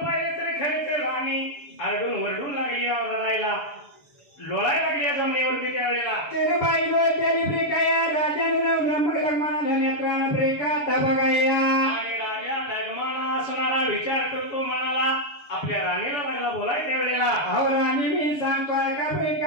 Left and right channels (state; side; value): late; right; 6.9 ms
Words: पाहिजे लोळायला लागली या जमिनीवरती त्यावेळेला तेरे बाई लोळत्याली प्रिकाया राजानं ब्रह्मक लग्माना नेत्रानं प्रिकाता बघाया आणि राजा लग्माना असणारा विचार करतो मनाला आपल्या राणीला लागला बोलाय त्यावेळेला अहो राणी मी सांगतोय का